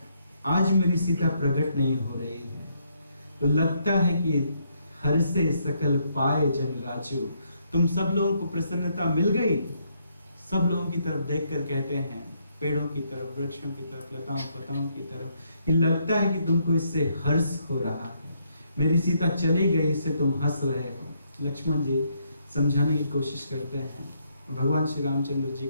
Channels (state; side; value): inverted; both; correlation -0.74